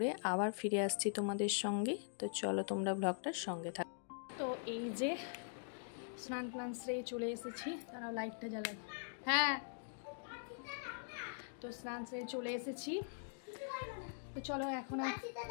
আবার ফিরে আসছি তোমাদের সঙ্গে। তো চলো তোমরা ব্লগটার সঙ্গে থাকো। তো এই যে স্নান সেরে চলে এসেছি, তারা লাইটটা জ্বালাই। হ্যাঁ, তো স্নান সেরে চলে এসেছি। তো চলো এখন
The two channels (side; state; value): right; silent; digital silence